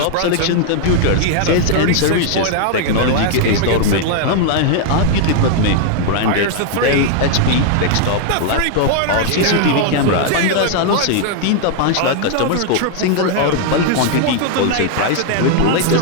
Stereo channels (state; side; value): different; both; correlation 0.00